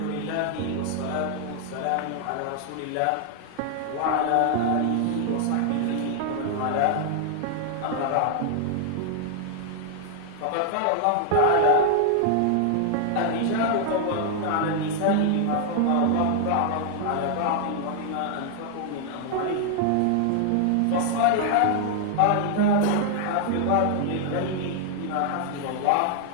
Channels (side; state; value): both; different; correlation 0.00